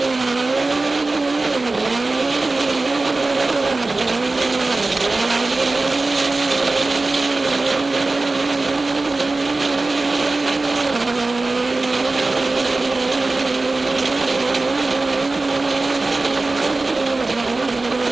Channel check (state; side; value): quieter; left; 3.3 dB